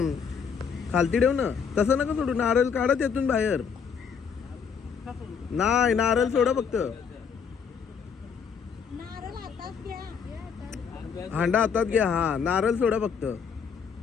खालती ठेव ना. तसं नका सोडू. नारळ काढा त्यातून बाहेर. नाही नारळ सोडा फक्त. नारळ हातात घ्या. हांडा हातात घ्या. हा नारळ सोडा फक्त.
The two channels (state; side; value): quieter; right; 6.5 dB